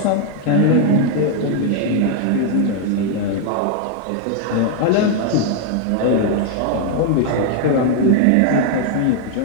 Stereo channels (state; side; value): different; both; correlation 0.00